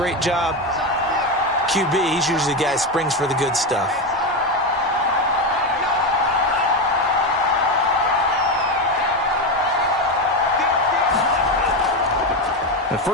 job, QB, he's usually the guy who springs for the good stuff. The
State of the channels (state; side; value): normal; both; correlation 0.13